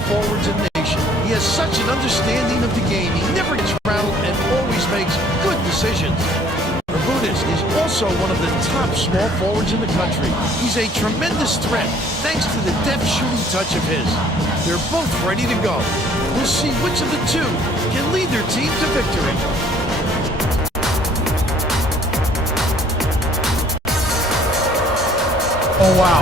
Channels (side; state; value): both; normal; correlation 0.58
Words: forwards in the nation. He has such an understanding of the game. He never gets rattled and always makes good decisions. Bermudez is also one of the top small forwards in the country. He's a tremendous threat thanks to the deft shooting touch of his. They're both ready to go. We'll see which of the two can lead their team to victory. Oh,